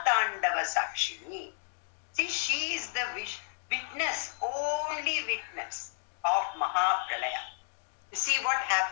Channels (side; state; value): right; silent; digital silence